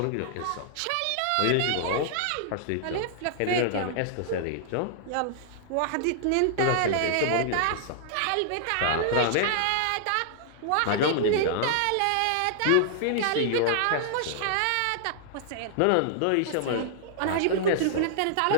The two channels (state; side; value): different; both; correlation -0.01